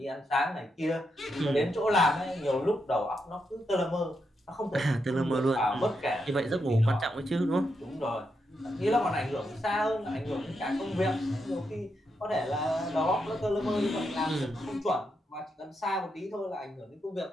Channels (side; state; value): both; normal; correlation 0.83